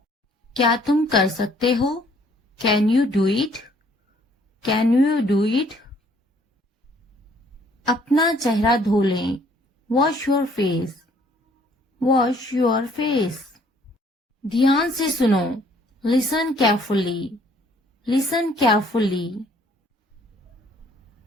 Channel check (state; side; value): normal; both; correlation 0.61